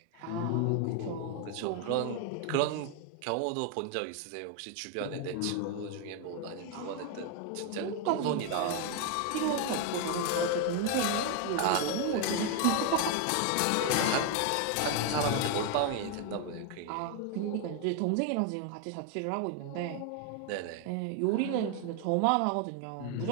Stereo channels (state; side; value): different; both; correlation 0.01